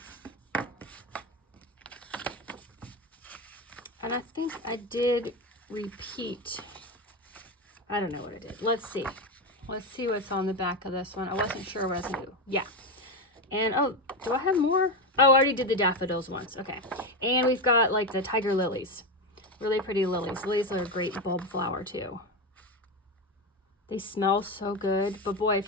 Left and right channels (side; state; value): both; normal; correlation 0.14